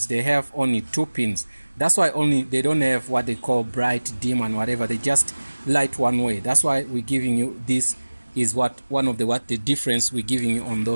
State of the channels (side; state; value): both; inverted; correlation -1.00